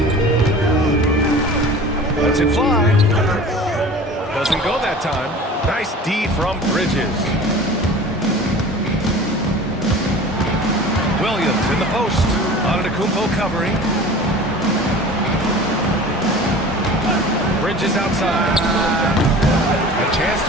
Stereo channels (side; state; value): both; normal; correlation 0.40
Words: Lets it fly. Doesn't go that time. Nice D from Bridges. Williams in the post. Antetokounmpo covering. Bridges outside. A chance